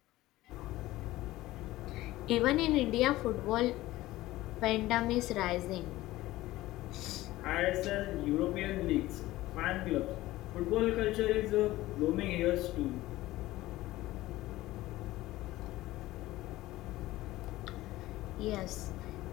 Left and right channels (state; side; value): quieter; right; 17.1 dB